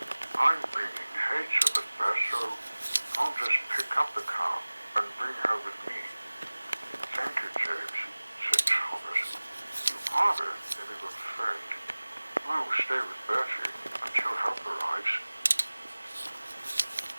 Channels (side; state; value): both; inverted; correlation -1.00